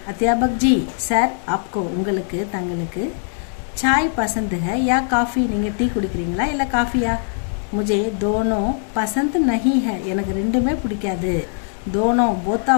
अध्यापक जी सर आपको உங்களுக்கு தங்களுக்கு चाय पसंद है या काफ़ी? நீங்கள் டீ குடிக்கிறீங்களா இல்லை காஃபியா? मुझे दोनों पसंद नहीं है. எனக்கு ரெண்டுமே பிடிக்காது. दोनों both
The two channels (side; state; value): right; silent; 65 dB below the other